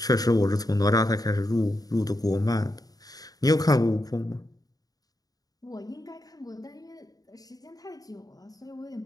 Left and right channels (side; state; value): right; late; 0.18 ms